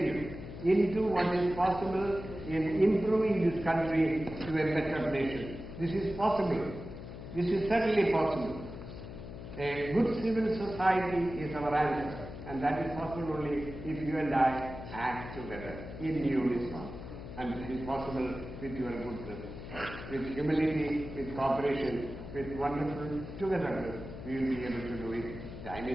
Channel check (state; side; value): noise; left; hum, 11 dB below the sound